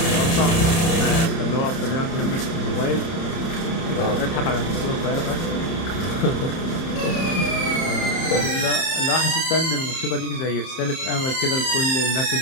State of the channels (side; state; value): right; late; 30 ms